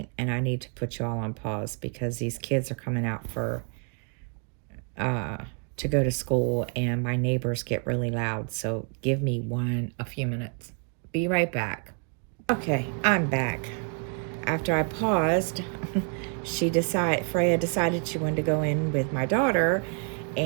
and I need to put you all on pause because these kids are coming out for uh to go to school, and my neighbors get really loud. So give me a few minutes. Be right back. Okay, I'm back. After I paused, Freya decided she wanted to go in with my daughter,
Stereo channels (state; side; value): quieter; left; 39.8 dB